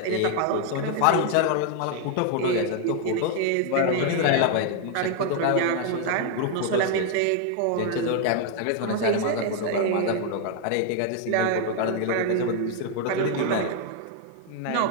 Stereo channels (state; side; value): different; both; correlation 0.01